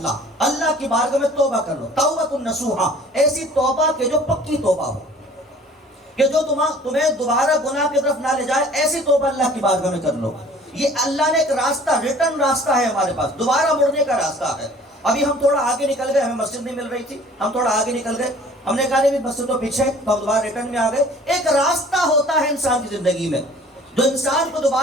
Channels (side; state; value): both; normal; correlation 0.50